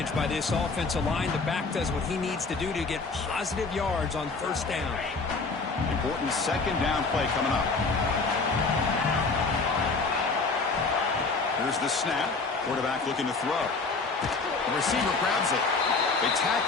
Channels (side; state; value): right; quieter; 4.1 dB